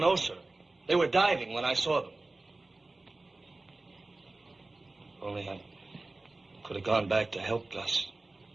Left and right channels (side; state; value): left; quieter; 3.1 dB